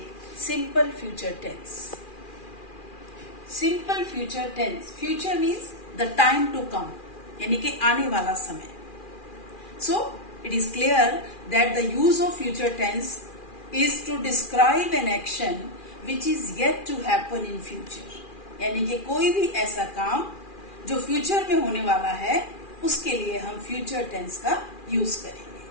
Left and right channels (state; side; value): late; right; 2.4 ms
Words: simple future tense. Simple future tense. Future means the time to come, यानी कि आने वाला समय. So it is clear that the use of future tense is to describe an action which is yet to happen in future. यानी कि कोई भी ऐसा काम जो फ्यूचर में होने वाला है उसके लिए हम फ्यूचर टेंस का यूज करेंगे.